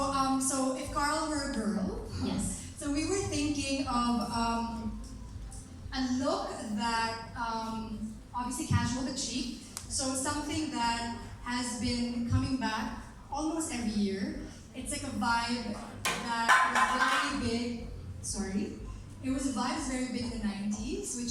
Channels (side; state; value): both; identical; correlation 1.00